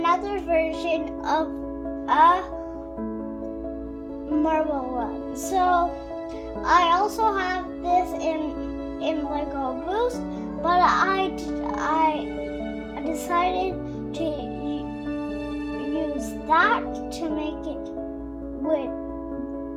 version of a marble run. So I also have this in Lego Boost, but I decided to use that to make it with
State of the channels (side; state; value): both; identical; correlation 1.00